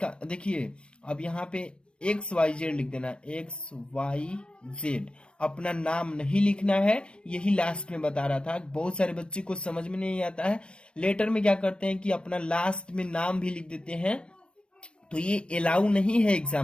देखिए, अब यहाँ पे XYZ लिख देना, XYZ। अपना नाम नहीं लिखना है, यही लास्ट में बता रहा था। बहुत सारे बच्चे को समझ में नहीं आता है, लेटर में क्या करते हैं कि अपना लास्ट में नाम भी लिख देते हैं, तो ये अलाउ नहीं है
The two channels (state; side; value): late; right; 0.057 ms